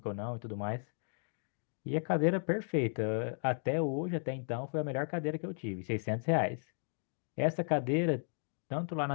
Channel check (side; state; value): right; silent; digital silence